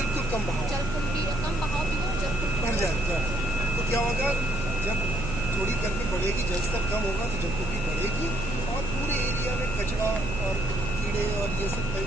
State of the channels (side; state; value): right; noise; hum, 7 dB below the sound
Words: कम बहाव जलकुंभी कम बहाव भी हो जलकुंभी भर जाएगा। तो क्या होगा जब थोड़ी गर्मी बढ़ेगी जलस्तर कम होगा तो जलकुंभी बढ़ेगी और पूरे एरिया में कचरा और कीड़े और ये सब